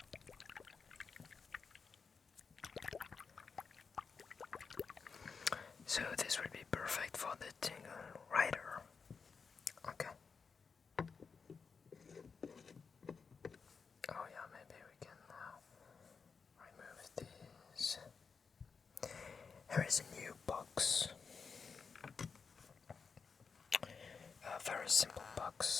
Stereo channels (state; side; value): quieter; right; 5.4 dB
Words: So this would be perfect for the tingle rider. Okay. Oh yeah, maybe we can remove these. Here is a new box. A very simple